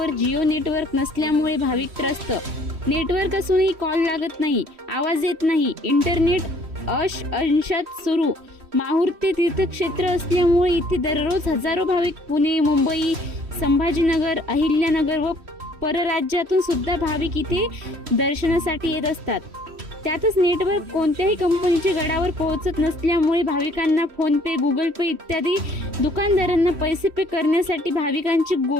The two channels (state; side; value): late; left; 3.1 ms